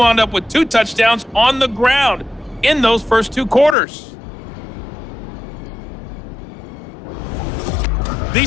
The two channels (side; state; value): right; drops out; at 3.8 s